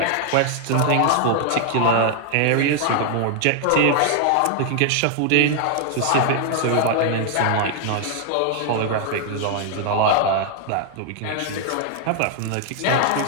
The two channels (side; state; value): both; different; correlation 0.00